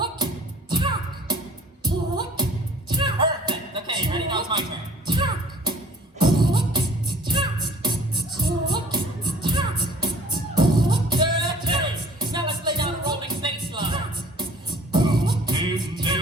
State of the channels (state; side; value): normal; both; correlation 0.50